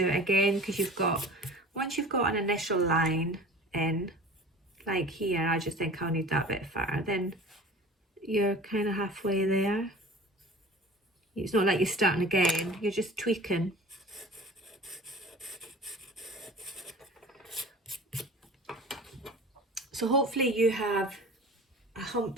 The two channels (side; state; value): both; normal; correlation 0.41